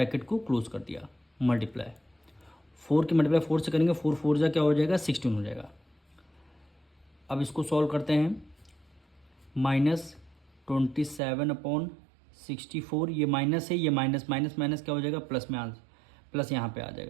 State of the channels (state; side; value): drops out; left; at 11.2 s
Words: को क्लोज कर दिया, मल्टीप्लाई 4 की मल्टीप्लाई 4 से करेंगे, 4 4 जा क्या हो जाएगा 16 हो जाएगा। अब इसको सॉल्व करते हैं, -27/64, ये माइनस है, ये माइनस माइनस माइनस क्या हो जाएगा प्लस में, आंसर प्लस यहाँ पे आ